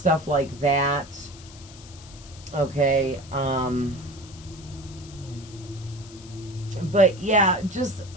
like that, okay? But yeah, just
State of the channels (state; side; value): noise; left; hiss, 20 dB below the sound